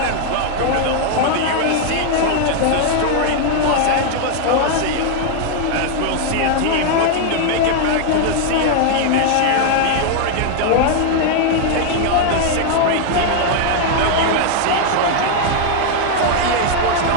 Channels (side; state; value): both; different; correlation 0.00